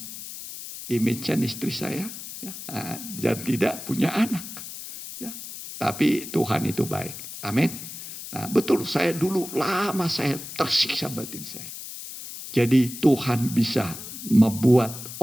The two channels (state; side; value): noise; left; hiss, 11 dB below the sound